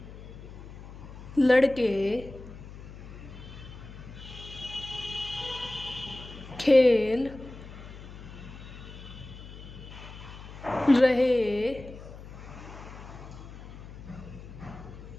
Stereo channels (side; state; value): left; noise; hum, 14 dB below the sound